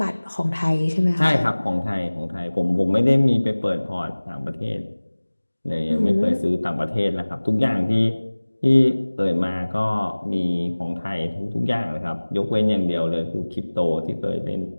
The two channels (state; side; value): inverted; both; correlation -1.00